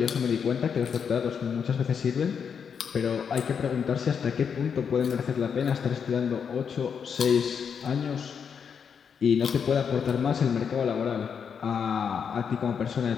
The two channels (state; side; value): quieter; right; 6.9 dB